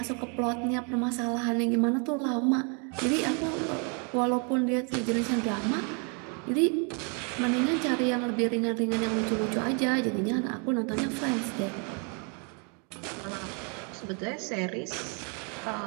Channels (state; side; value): quieter; left; 37.2 dB